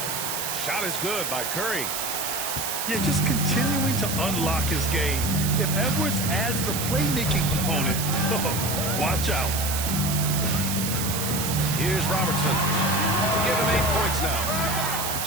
Shot is good by Curry. Yeah, just continuing to unlock his game. If Edwards adds the playmaking component, watch out. Here's Robertson. Give him 8 points now.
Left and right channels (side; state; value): right; noise; hiss, 2 dB below the sound